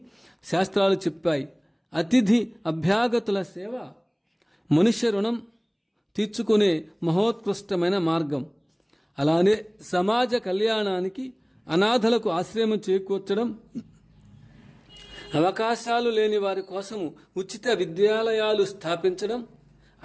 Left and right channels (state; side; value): identical; both; correlation 1.00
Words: శాస్త్రాలు చెప్పాయి. అతిథి అభ్యాగతుల సేవ మనుష్య రుణం తీర్చుకునే మహోత్కృష్టమైన మార్గం. అలానే సమాజ కళ్యాణానికి అనాథలకు ఆశ్రయం చేకూర్చడం, అవకాశాలు లేని వారి కోసము ఉచిత విద్యాలయాలు స్థాపించడం,